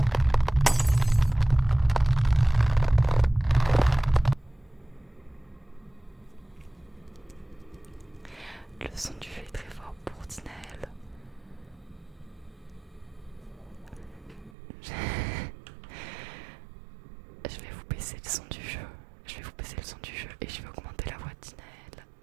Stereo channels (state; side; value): drops out; left; at 14.6 s